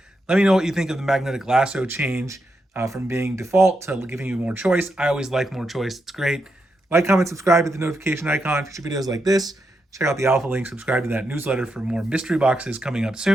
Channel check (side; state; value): both; normal; correlation 0.83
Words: Let me know what you think of the magnetic lasso change from being default to giving you more choice. I always like more choice. It's great. Like, comment, subscribe, hit the notification icon. Future videos like this. Check out the alpha link. Subscribe to that newsletter for more mystery boxes coming up